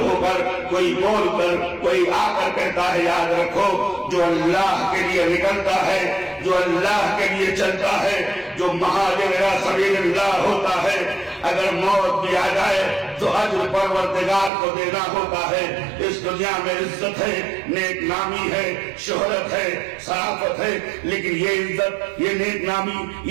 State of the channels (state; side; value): drops out; left; at 14.5 s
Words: کر، کوئی بول کر، کوئی آ کر کہتا ہے یاد رکھو جو اللہ کے لیے نکلتا ہے، جو اللہ کے لیے چلتا ہے، جو مہاجر الی سبیل اللہ ہوتا ہے، اگر موت بھی آ جائے تو اجر پروردگار کو دینا ہوتا ہے. اس دنیا میں عزت ہے، نیک نامی ہے، شہرت ہے، شرافت ہے، لیکن یہ عزت، یہ نیک نامی،